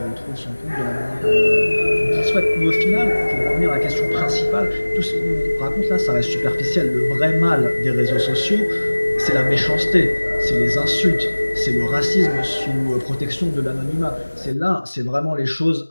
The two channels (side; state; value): both; inverted; correlation -1.00